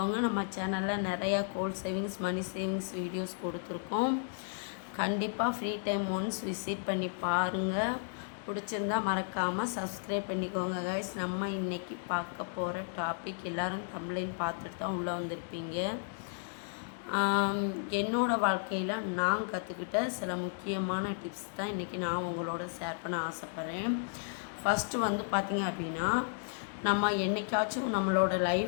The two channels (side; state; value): right; silent; digital silence